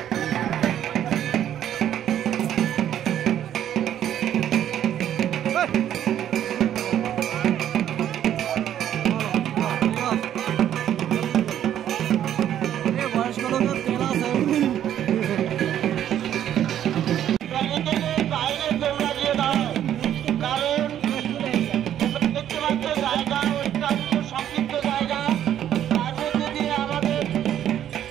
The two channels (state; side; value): quieter; left; 10.7 dB